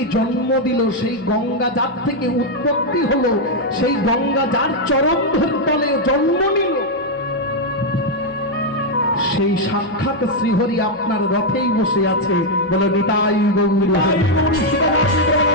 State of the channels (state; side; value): noise; right; hum, 27 dB below the sound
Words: জন্ম দিল, সেই গঙ্গা যার থেকে উৎপত্তি হলো, সেই গঙ্গা যার চরণ তলে জন্ম নিল, সেই সাক্ষাৎ শ্রীহরি আপনার রথেই বসে আছে। বলে নিতাই গৌর।